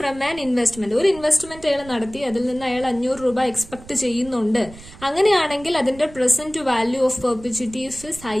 an investment, ഒരു ഇൻവെസ്റ്റ്മെന്റ് അയാൾ നടത്തി, അതിൽ നിന്ന് അയാൾ 500 രൂപ എക്സ്പെക്ട് ചെയ്യുന്നുണ്ട്. അങ്ങനെയാണെങ്കിൽ അതിന്റെ present value of perpetuity i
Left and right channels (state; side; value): noise; right; rumble, 19 dB below the sound